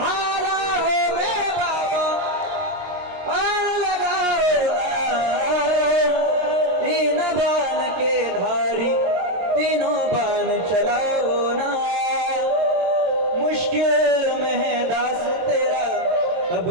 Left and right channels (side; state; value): left; late; 22 ms